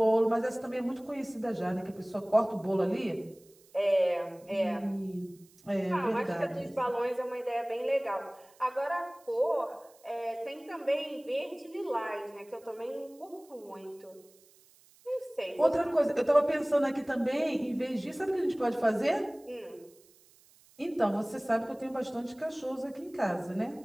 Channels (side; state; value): right; noise; hiss, 28 dB below the sound